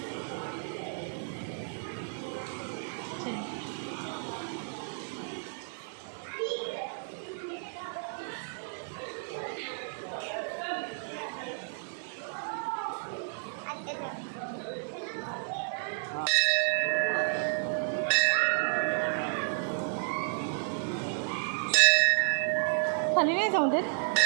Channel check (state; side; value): silent; left; 56 dB below the other